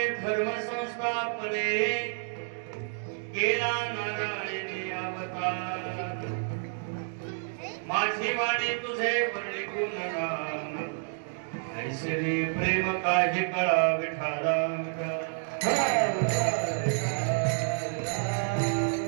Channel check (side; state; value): left; silent; digital silence